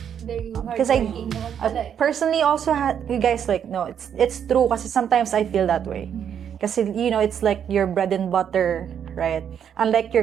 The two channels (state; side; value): quieter; left; 8.5 dB